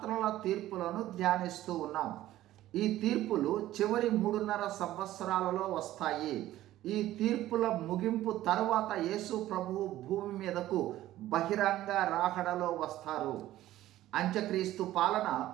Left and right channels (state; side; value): quieter; left; 14.5 dB